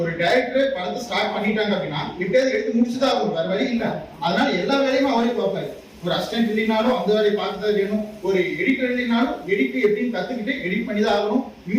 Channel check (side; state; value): both; identical; correlation 1.00